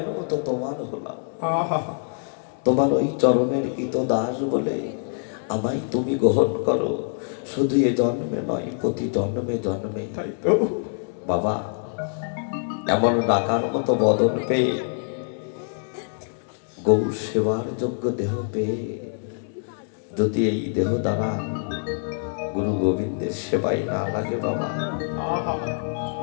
মতো তোমার হলাম, তোমার ওই চরণের কৃত দাস বলে আমায় তুমি গ্রহণ করো। শুধু এ জন্মে নয়, প্রতি জন্মে জন্মে। তাই তো বাবা এমন ডাকার মতো বদন পেয়ে, গৌ সেবার যোগ্য দেহ পেয়ে যদি এই দেহ দ্বারা গুরু গোবিন্দের সেবাই না লাগে বাবা,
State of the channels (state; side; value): silent; right; digital silence